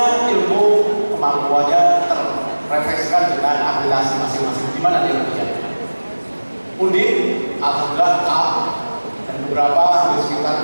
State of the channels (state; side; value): inverted; both; correlation -1.00